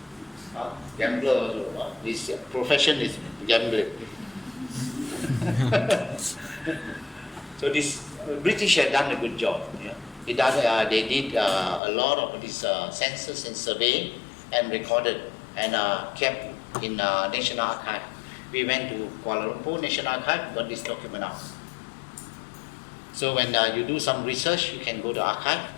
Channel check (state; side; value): drops out; right; at 11.8 s